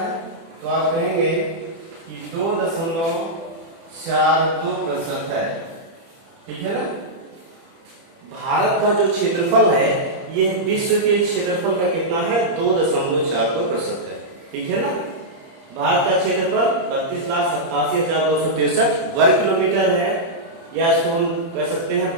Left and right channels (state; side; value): late; left; 30 ms